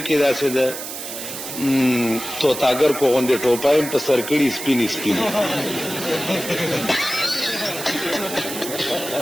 کی دا سے دا تو تاگر کو غندے ٹوپائیں پا سرکڑی سپینی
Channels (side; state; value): right; noise; hiss, 8 dB below the sound